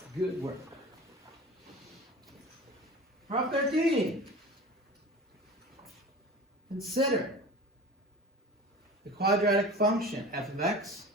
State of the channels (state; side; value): normal; both; correlation 0.36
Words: good work. Problem 13. Consider the quadratic function f of x